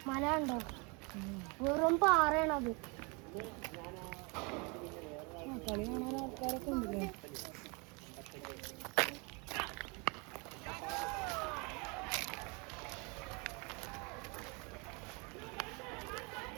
മല ഉണ്ടോ? വെറും പാറയാണത്. കളി കാണാൻ ആൾക്കാരൊക്കെ ഉണ്ടല്ലേ.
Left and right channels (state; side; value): quieter; left; 30.6 dB